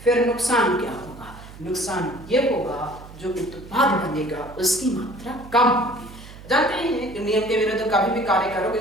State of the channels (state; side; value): noise; right; hum, 17 dB below the sound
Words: फिर नुकसान क्या होगा? नुकसान ये होगा जो उत्पाद बनेगा उसकी मात्रा कम होगी। जानते हैं कि नियम के विरुद्ध कभी भी कार्य करोगे